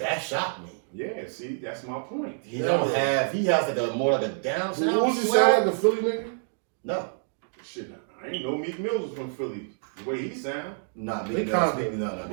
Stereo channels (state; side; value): silent; left; digital silence